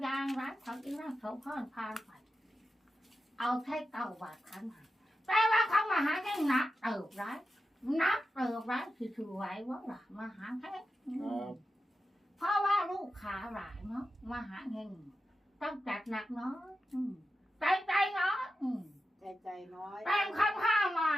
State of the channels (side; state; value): both; normal; correlation 0.90